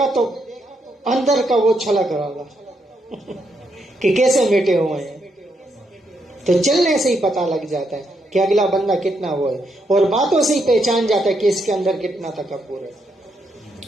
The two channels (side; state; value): both; normal; correlation 0.78